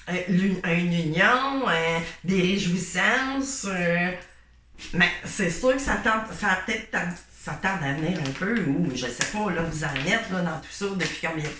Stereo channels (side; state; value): both; identical; correlation 1.00